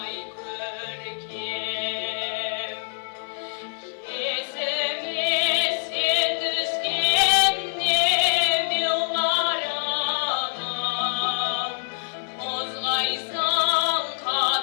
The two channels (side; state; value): right; silent; 62 dB below the other